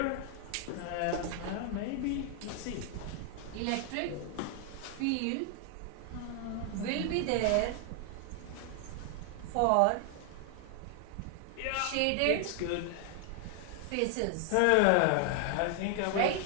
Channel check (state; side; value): different; both; correlation 0.00